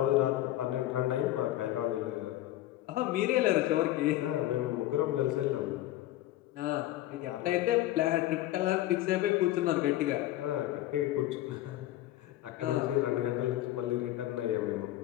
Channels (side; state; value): right; quieter; 14.8 dB